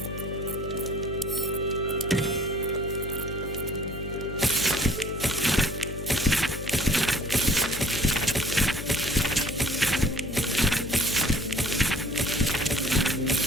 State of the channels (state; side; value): noise; left; hum, 9 dB below the sound